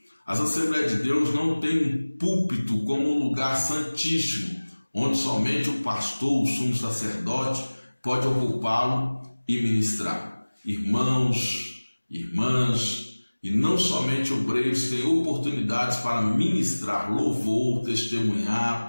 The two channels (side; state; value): both; inverted; correlation -1.00